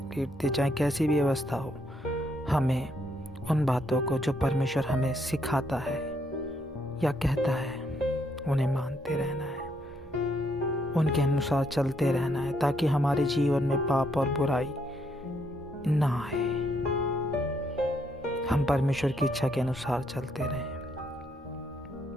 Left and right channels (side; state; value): both; normal; correlation 0.73